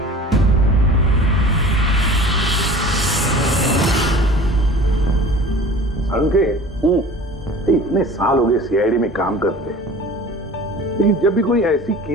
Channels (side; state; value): both; normal; correlation 0.42